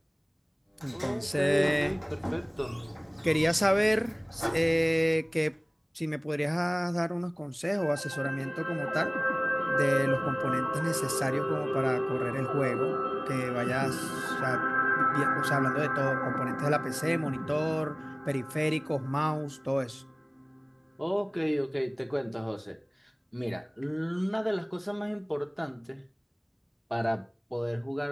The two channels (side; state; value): both; identical; correlation 1.00